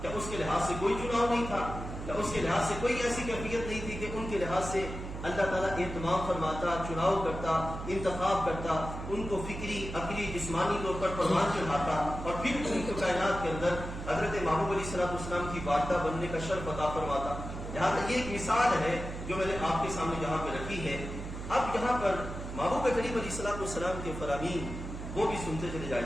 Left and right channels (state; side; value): noise; right; hum, 8 dB below the sound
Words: کیا اس کے لحاظ سے کوئی چناؤ نہیں تھا؟ کیا اس کے لحاظ سے کوئی ایسی کیفیت نہیں تھی کہ ان کے لحاظ سے اللہ تعالیٰ اہتمام فرماتا، چناؤ کرتا، انتخاب کرتا، ان کو فکری، عقلی، جسمانی طور پر پروان چڑھاتا اور پھر ان کو کائنات کے اندر حضرت محبوب علیہ السلام کی والدہ بننے کا شرف عطا فرماتا؟ لہٰذا یہ ایک مثال ہے جو میں نے آپ کے سامنے یہاں پہ رکھی ہے. اب یہاں پر محبوب کریم علیہ السلام کے فرامین وہ بھی سنتے چلے